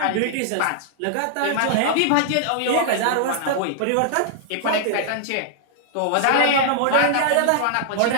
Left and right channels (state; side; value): different; both; correlation -0.01